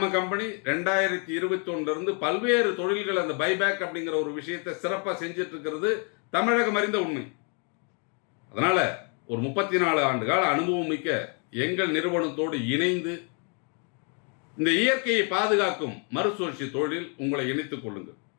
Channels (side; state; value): right; quieter; 38.8 dB